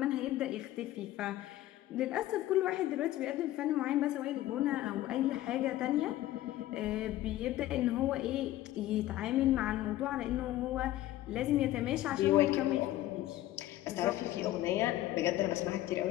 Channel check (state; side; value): quieter; right; 14.8 dB